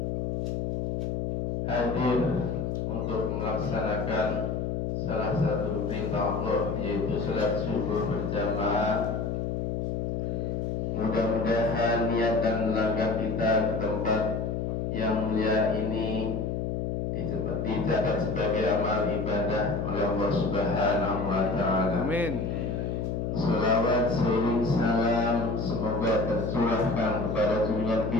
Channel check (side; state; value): left; noise; hum, 1 dB below the sound